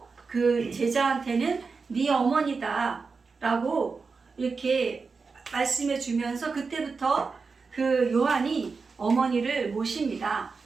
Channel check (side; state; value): left; quieter; 4.7 dB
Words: 그 제자한테는 네 어머니다 라고 이렇게 말씀해 주면서 그때부터 그 요한이 어머니를 모십니다.